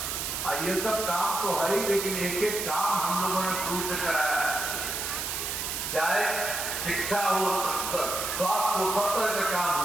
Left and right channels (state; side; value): noise; right; hiss, 3 dB below the sound